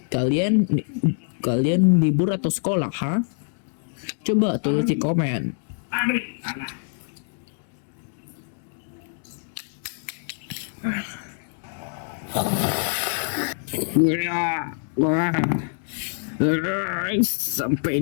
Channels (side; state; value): right; silent; digital silence